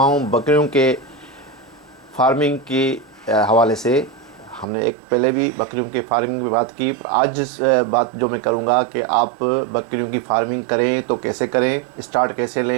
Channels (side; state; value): left; drops out; at 4.7 s